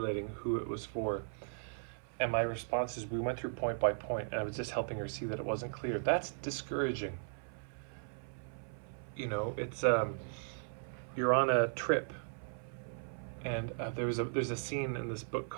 who it was for. And my response is, we went through point by point, and I was just helping her see that it wasn't clear. That's discouraging. You know, it's, you're on a trip, and there's a scene in this book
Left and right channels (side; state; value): left; silent; 53 dB below the other